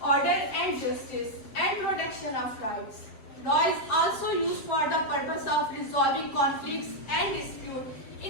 order and justice, and protection of rights. Law is also used for the purpose of resolving conflicts and disputes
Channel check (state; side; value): late; right; 7.7 ms